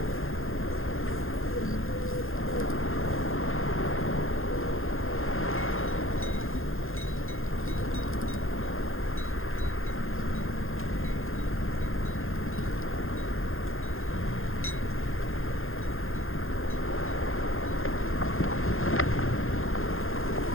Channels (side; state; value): right; late; 0.60 ms